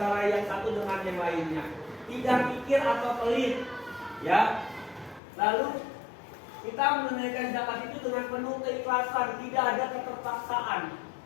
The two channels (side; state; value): right; drops out; at 5.2 s